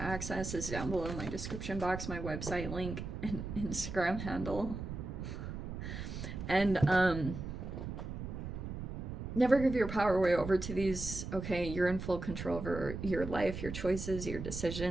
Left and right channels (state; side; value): noise; right; rumble, 6 dB below the sound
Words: access is down below in my description box, my website link, and Instagram handle. And never give your power away over to these. Okay, you're in full control over your life, your choices, your